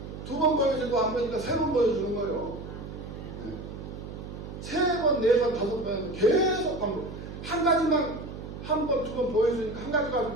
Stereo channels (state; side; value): noise; right; hum, 10 dB below the sound